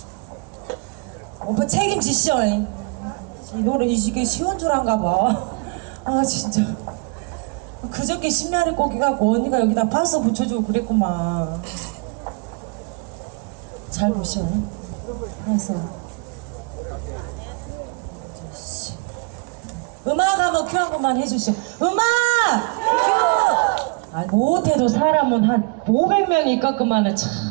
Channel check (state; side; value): quieter; left; 32.0 dB